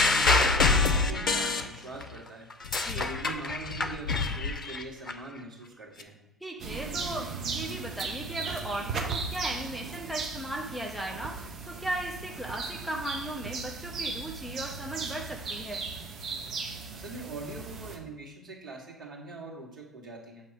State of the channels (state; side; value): normal; both; correlation 0.42